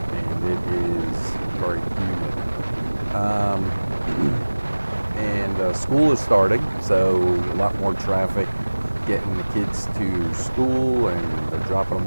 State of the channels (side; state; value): both; inverted; correlation -1.00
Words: and it is very humid. And school is starting, so a lot more traffic getting the kids to school, and they're dropping